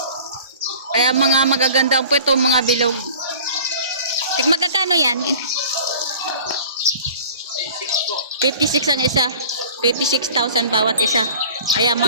Kaya mga magaganda ang puwet, oh, mga bilog. Magkakano yan? 56 ang isa. 56,000 bawat isa. Ayan,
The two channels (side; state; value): both; inverted; correlation -0.44